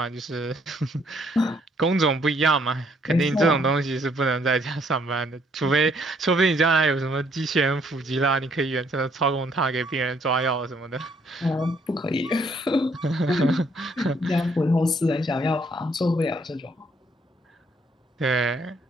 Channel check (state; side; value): normal; both; correlation 0.67